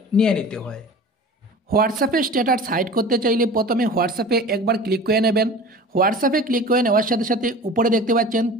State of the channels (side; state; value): both; normal; correlation 0.38